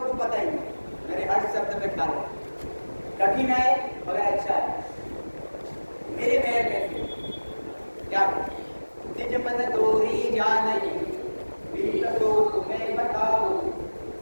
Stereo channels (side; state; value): both; inverted; correlation -1.00